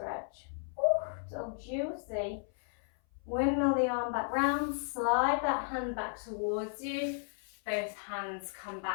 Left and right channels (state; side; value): silent; right; 55 dB below the other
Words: Ooh, so juicy. Windmill the arm back round, slide that hand back towards you. Both hands come